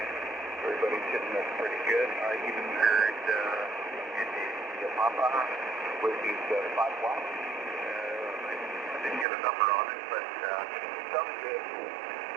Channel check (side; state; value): left; drops out; at 9.2 s